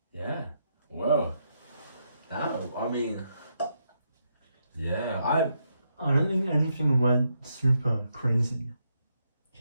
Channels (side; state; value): both; inverted; correlation -0.80